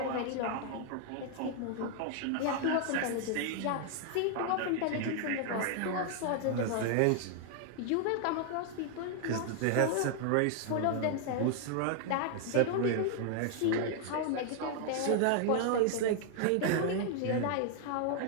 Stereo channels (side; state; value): both; different; correlation 0.00